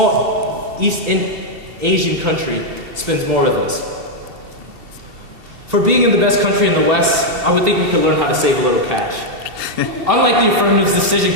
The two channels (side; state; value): left; late; 2.7 ms